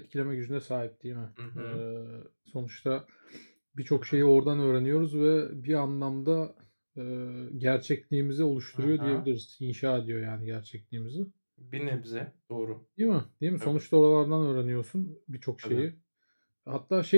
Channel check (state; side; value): inverted; both; correlation -1.00